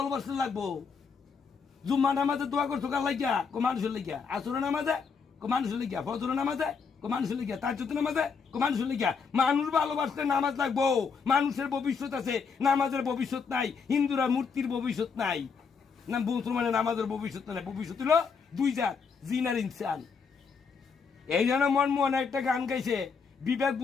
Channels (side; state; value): right; quieter; 5.6 dB